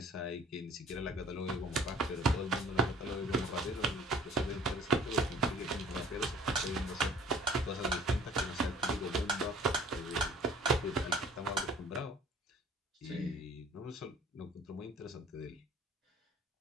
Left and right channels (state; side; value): normal; both; correlation 0.51